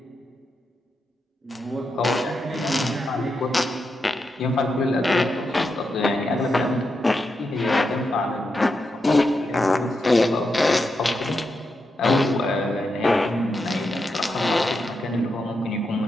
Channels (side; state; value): both; normal; correlation 0.85